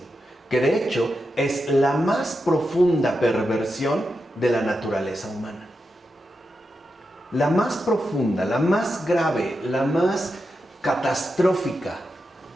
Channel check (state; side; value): normal; both; correlation 0.88